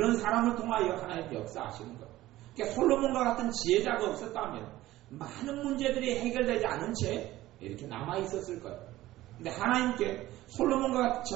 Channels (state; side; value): quieter; left; 16.1 dB